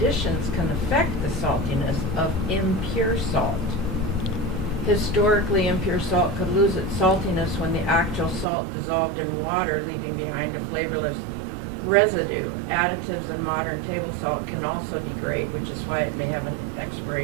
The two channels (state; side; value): drops out; left; at 8.5 s